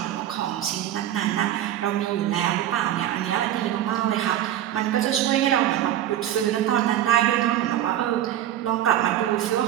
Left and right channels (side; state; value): left; quieter; 12.0 dB